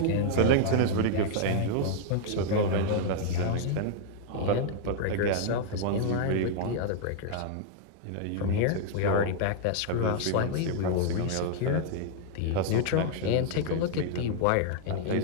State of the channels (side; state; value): both; different; correlation -0.01